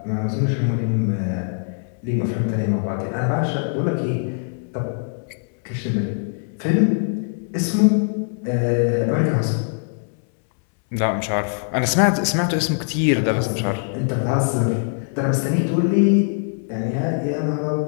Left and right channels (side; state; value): right; silent; 64 dB below the other